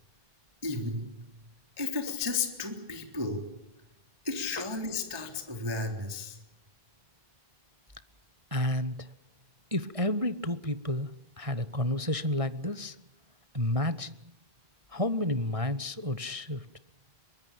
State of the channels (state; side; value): late; left; 1.2 ms